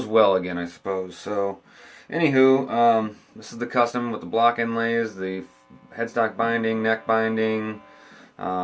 well again, I suppose. So anywho, this is the custom with the block inlays, the headstock binding, neck binding,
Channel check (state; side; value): identical; both; correlation 1.00